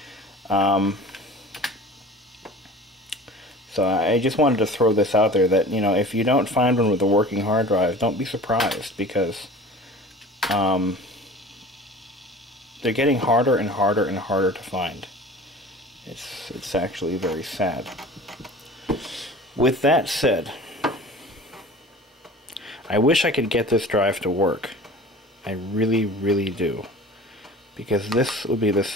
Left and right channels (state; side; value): normal; both; correlation 0.41